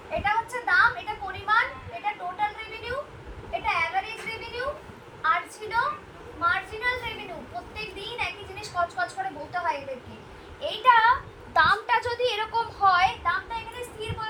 এটা হচ্ছে দাম, এটা পরিমাণ, এটা টোটাল রেভিনিউ, এটা অ্যাভারেজ রেভিনিউ, আর ছিল মার্জিনাল রেভিনিউ। প্রত্যেক দিন একই জিনিস কচকচ করে বলতে হয় এদেরকে। এইটা দামটা যদি এরকম হয়, দামটা এখানে স্থির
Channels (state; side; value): identical; both; correlation 1.00